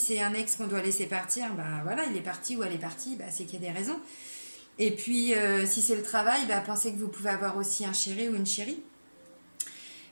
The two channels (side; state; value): both; inverted; correlation -1.00